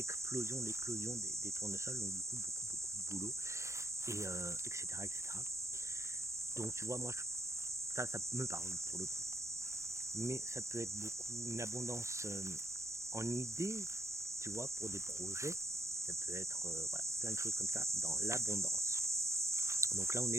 des tournesols, donc du coup, beaucoup de boulot, et etc., etc. Donc tu vois, moi, ça me parle pour le coup. Mais ça peut être beaucoup une abondance en idées, tu vois, pour des projets. Ça peut être voilà, plein de choses comme ça dans l'abondance. Donc là, on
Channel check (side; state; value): left; late; 0.14 ms